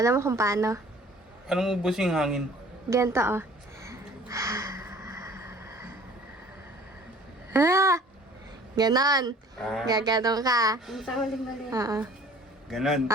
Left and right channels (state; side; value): normal; both; correlation 0.51